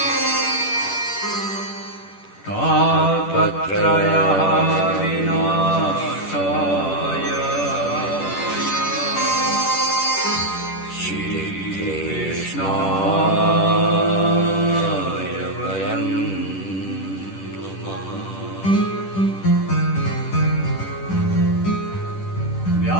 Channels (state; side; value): late; right; 10 ms